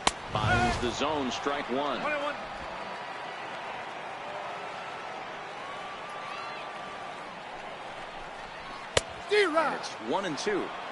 finds the zone, strike 1. 1-1. And it's 1-2.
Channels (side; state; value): both; identical; correlation 1.00